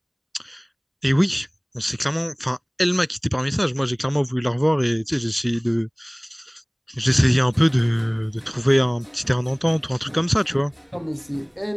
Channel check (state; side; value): identical; both; correlation 1.00